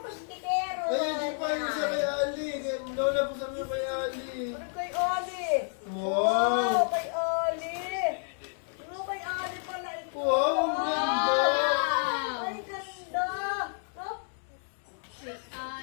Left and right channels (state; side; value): silent; right; 58 dB below the other